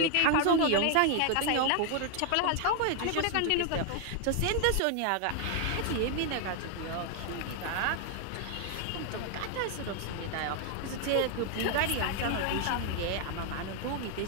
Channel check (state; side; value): different; both; correlation 0.00